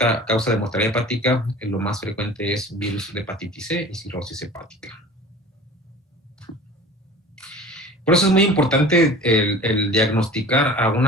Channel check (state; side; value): normal; both; correlation 0.41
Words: causa de mortalidad hepática, lo más frecuente es virus de hepatitis C y cirrosis hepática. Por eso es muy importante el diagnosticar a